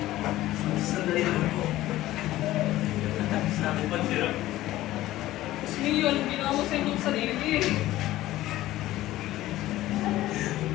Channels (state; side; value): quieter; right; 15.6 dB